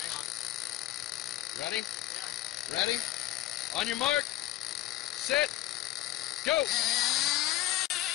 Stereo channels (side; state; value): right; quieter; 14.4 dB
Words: Ready? Ready? On your mark. Set. Go.